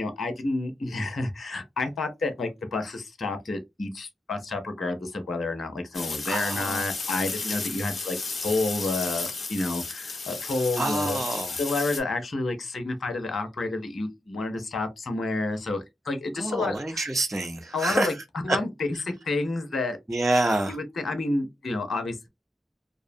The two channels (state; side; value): normal; both; correlation 0.84